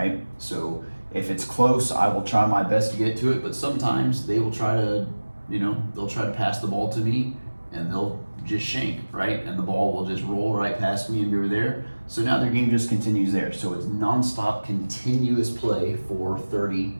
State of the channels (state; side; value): inverted; both; correlation -1.00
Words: So if it's close, I will try my best to get to it, but sometimes they will try to, they'll try to pass the ball to me, and they'll just shank, right? And the ball will just roll right past me and go there. So now their game just continues there. So it's nonstop, continuous play for 30